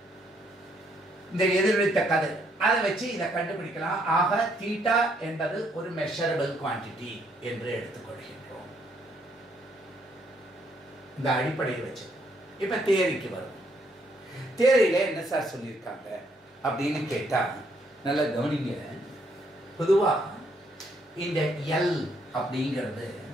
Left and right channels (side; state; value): both; normal; correlation 0.71